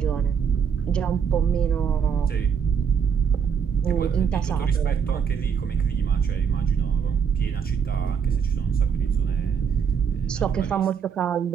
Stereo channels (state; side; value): quieter; left; 7.0 dB